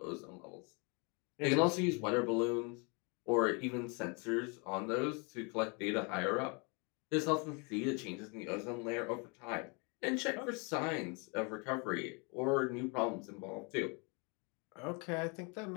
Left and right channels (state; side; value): quieter; right; 32.5 dB